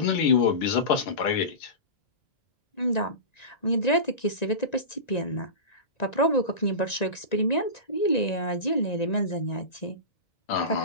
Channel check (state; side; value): late; right; 1.9 ms